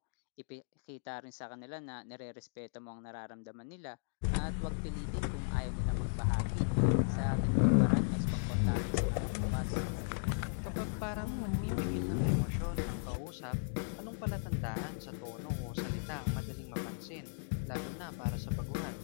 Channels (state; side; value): silent; right; digital silence